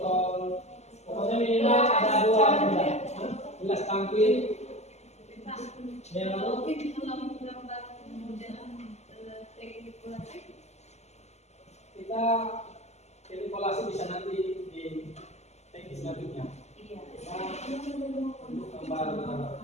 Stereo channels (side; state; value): right; late; 0.32 ms